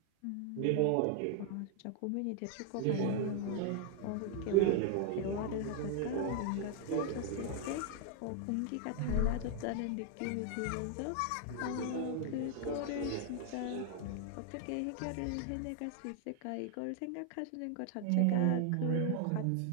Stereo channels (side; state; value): both; different; correlation 0.00